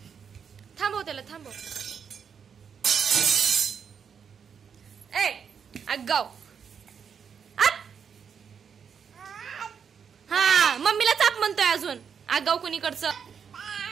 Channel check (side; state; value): left; quieter; 6.9 dB